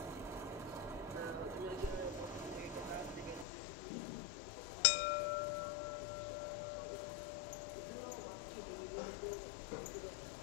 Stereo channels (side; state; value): right; drops out; at 3.5 s